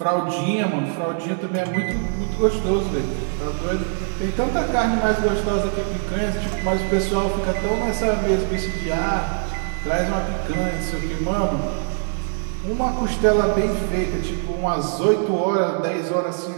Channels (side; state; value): left; silent; 64 dB below the other